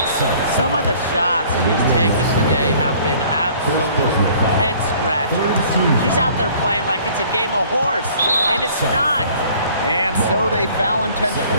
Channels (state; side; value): inverted; both; correlation -0.54